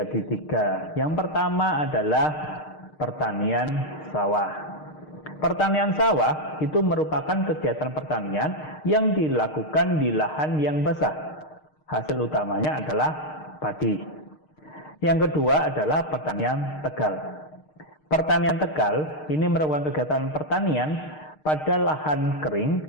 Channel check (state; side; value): late; right; 6.5 ms